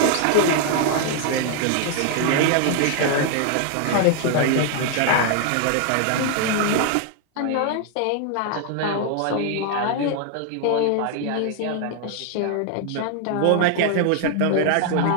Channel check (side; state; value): both; different; correlation 0.00